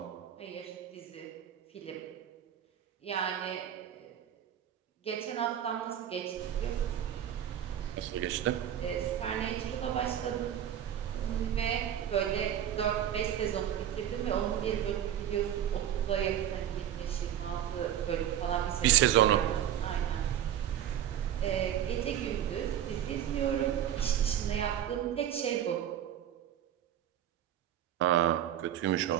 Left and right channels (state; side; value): quieter; left; 10.6 dB